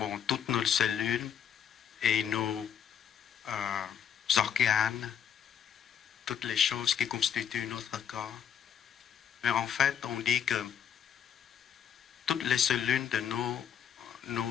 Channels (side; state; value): right; quieter; 8.5 dB